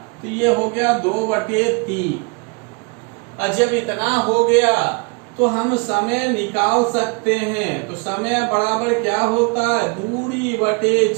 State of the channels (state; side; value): quieter; left; 31.1 dB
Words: तो ये हो गया 2/3। और जब इतना हो गया तो हम समय निकाल सकते हैं। तो समय बराबर क्या होता है, दूरी बटे